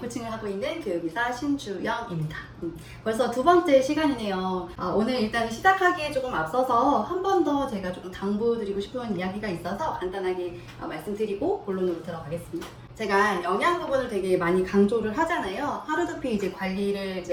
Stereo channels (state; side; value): identical; both; correlation 1.00